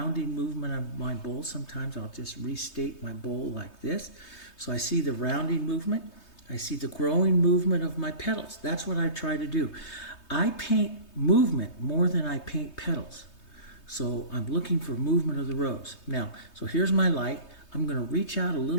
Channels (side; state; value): right; late; 3.2 ms